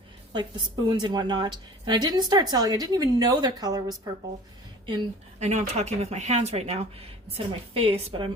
like the spoons and whatnot. And I didn't start selling. I didn't even know their color was purple. I know I'm talking with my hands right now instead of my face, but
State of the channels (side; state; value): both; normal; correlation 0.43